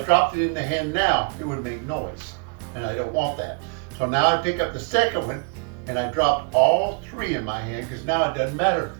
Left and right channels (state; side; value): quieter; left; 32.8 dB